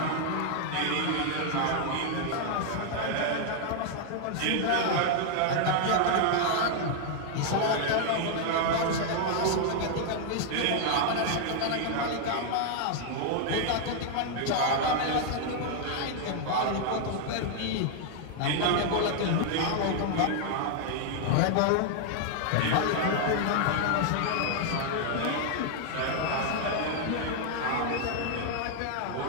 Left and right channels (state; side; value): different; both; correlation 0.00